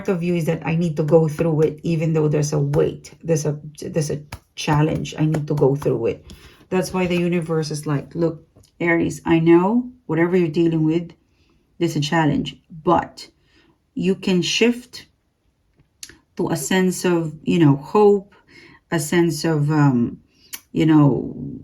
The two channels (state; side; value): identical; both; correlation 1.00